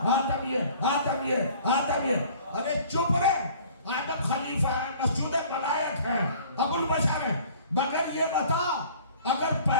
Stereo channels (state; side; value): inverted; both; correlation -0.50